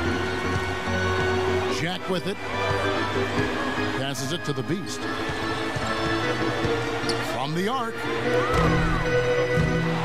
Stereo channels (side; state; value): both; identical; correlation 1.00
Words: Jack with it. Passes it to the Beast. From the arc.